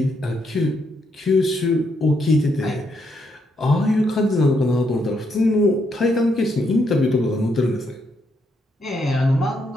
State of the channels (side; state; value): both; normal; correlation 0.77